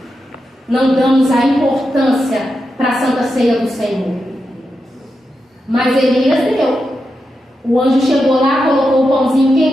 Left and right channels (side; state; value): both; normal; correlation 0.88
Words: não damos a importância para a Santa Ceia do Senhor. Mas Elias deu. O anjo chegou lá, colocou o pãozinho